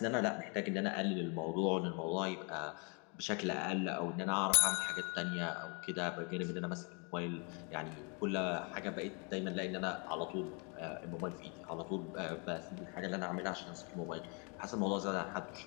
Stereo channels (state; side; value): quieter; right; 34.5 dB